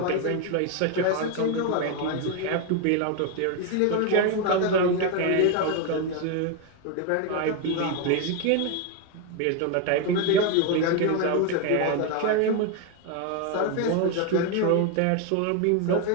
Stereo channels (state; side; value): different; both; correlation 0.01